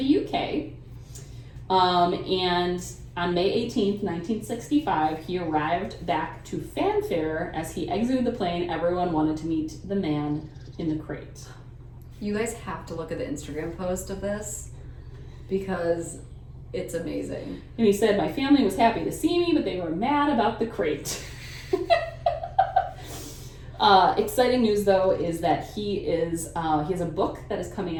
UK. And on May 18th, 1965, he arrived back to fanfare. As he exited the plane, everyone wanted to meet the man in the crate. You guys have to look at the Instagram post of this because It's amazing. And he said, my family was happy to see me, but they were mad about the crate. Exciting news, though, is that he has a book that is coming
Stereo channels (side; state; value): both; identical; correlation 1.00